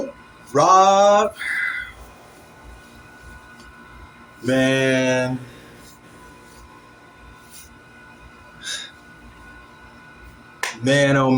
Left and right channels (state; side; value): identical; both; correlation 1.00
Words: Rob, man, man, oh